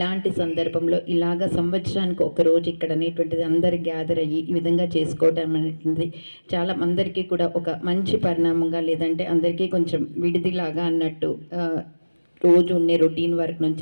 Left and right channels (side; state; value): both; inverted; correlation -1.00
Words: సందర్భంలో ఇలాగ సంవత్సరానికి ఒక రోజు ఇక్కడ అనేటువంటిది అందరు గ్యాదర్ అయ్యి ఈ విధంగా చేసుకోవటం అనేటువంటిది చాలా అందరికీ కూడా ఒక మంచి పరిణామంగా, లేదంటే అందరికీ కొంచెం విడిదిలాగా అన్నట్టు రోజు ఉండే రొటీన్ వర్క్ నుంచి